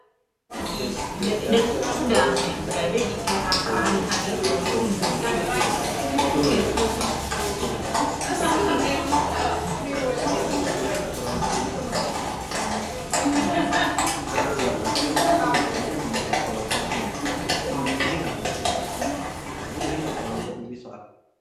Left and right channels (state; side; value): identical; both; correlation 1.00